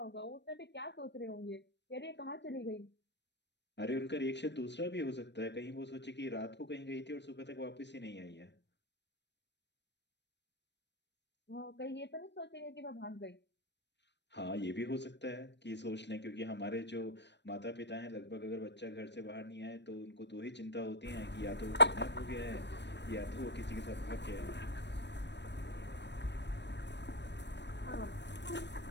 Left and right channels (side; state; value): right; late; 0.50 ms